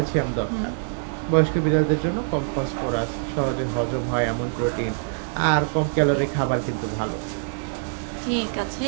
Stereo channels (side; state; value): left; silent; 62 dB below the other